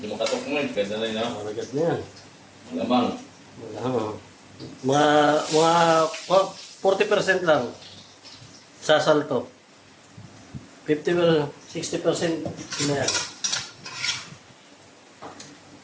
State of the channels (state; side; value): identical; both; correlation 1.00